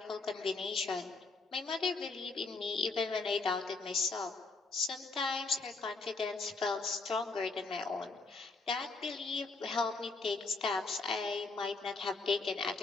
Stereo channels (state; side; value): quieter; right; 3.8 dB